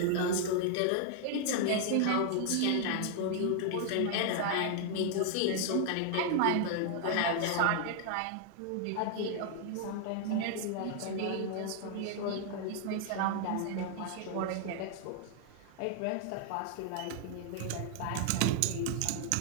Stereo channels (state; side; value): different; both; correlation 0.00